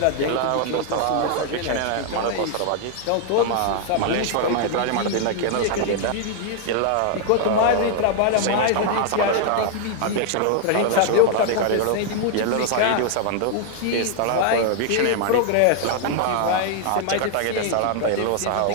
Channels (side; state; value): both; different; correlation 0.00